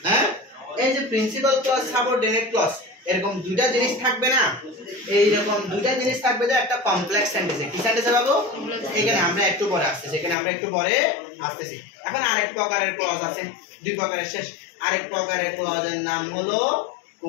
হ্যাঁ, এই যে প্রিন্সিপাল ক্লজ সাবঅর্ডিনেট ক্লজ এরকম দুইটা জিনিস থাকবে না, এইরকম দুইটা জিনিস থাকবে যে একটা কমপ্লেক্স সেন্টেন্সে। কি সেন্টেন্সে পাবো? এখানে আমরা একটু পরে আসতেছি, এখানে আমরা একটু পরে আসতেছি। এখন আরেক প্রকারের ক্লজ আছে, দুই প্রকারের শেষ। আরেক প্রকারের ক্লজের নাম হলো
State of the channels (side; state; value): right; drops out; at 10.4 s